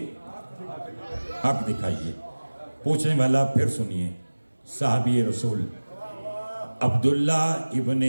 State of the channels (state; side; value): inverted; both; correlation -1.00